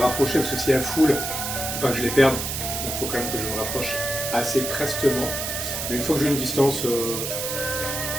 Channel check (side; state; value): right; noise; hiss, 3 dB below the sound